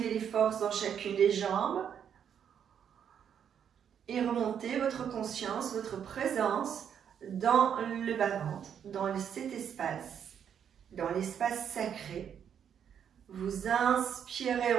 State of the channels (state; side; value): quieter; left; 8.4 dB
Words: les forces dans chacune des jambes. Et remontez votre conscience, votre présence dans le bas-ventre, dans cet espace, dans l'espace sacré. Vous inspirez